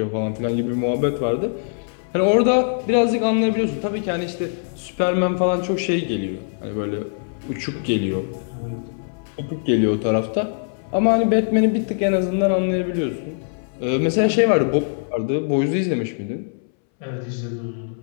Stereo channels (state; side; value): silent; right; 63 dB below the other